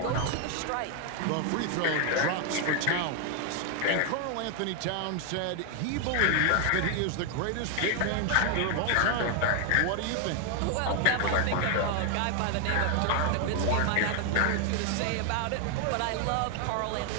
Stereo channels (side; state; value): both; different; correlation 0.00